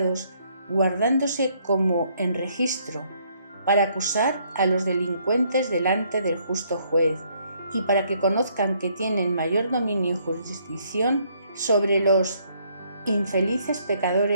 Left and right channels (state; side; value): inverted; both; correlation -0.68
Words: guardándose como en registro, para acusar a los delincuentes delante del justo juez, y para que conozcan que tienen mayor dominio y jurisdicción sobre los infelices